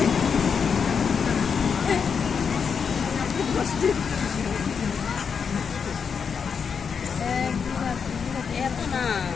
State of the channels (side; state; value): right; quieter; 6.3 dB